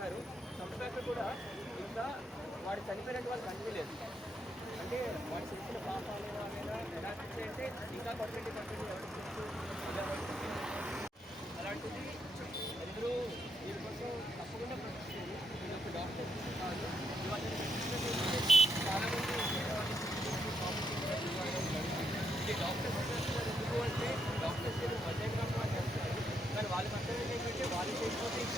చంపాక కూడా ఇంకా వాడు చనిపోయినట్టు వాళ్ళు కనిపించలేదు. అంటే వాడు చేసిన పాపాలు అనేది ఎలా అంటే ఇంకా కొట్టండి అలాంటిది అందరూ దీనికోసం తప్పకుండా ప్రశ్నిస్తుంది. నేను ఒక డాక్టర్ కాదు, ఇవాళ చాలామంది డాక్టర్స్ చేస్తున్నారు. ఎందుకు అంటే డాక్టర్స్ మధ్యాహ్నం వాళ్ళు చేస్తారు, కానీ వాళ్ళ పక్కన ఏంటంటే వాళ్ళు చేయకపోతే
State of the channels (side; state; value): both; normal; correlation 0.78